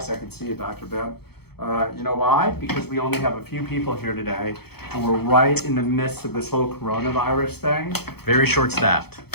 I can see you, Dr. Ben. You know why? Because we only have a few people here today, and we're right in the midst of this whole coronavirus thing. Very short staffed.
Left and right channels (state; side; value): late; right; 0.96 ms